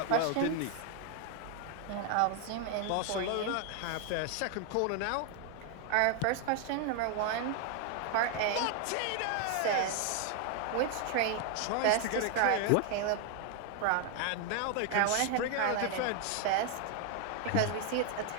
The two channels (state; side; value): different; both; correlation 0.00